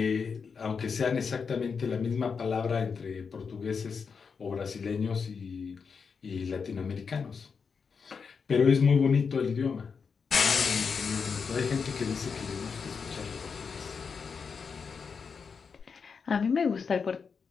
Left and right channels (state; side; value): quieter; right; 5.7 dB